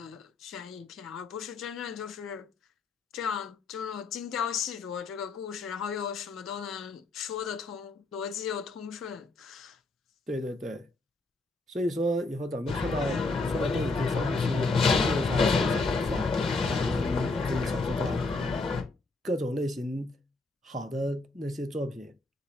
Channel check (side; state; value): right; quieter; 3.3 dB